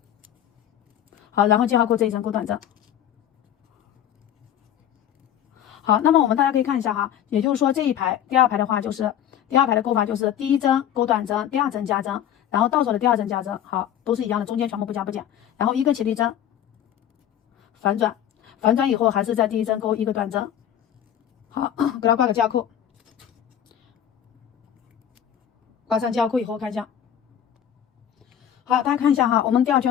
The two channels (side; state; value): right; quieter; 10.2 dB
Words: 好，然后记号扣这一针勾短针。好，那么我们大家可以看一下哈，也就是说这一排第2排的话就是第2排的勾法就是第1针勾短针，第2针加针，然后倒手的第2针加针，好，都是一样的，中间全部不加不减，然后一个起立针，反转，反转以后还是在第1针勾一个短针，好，给它挂个记号扣，挂上交扣以后看一下。好，大家看一下哈，我们第二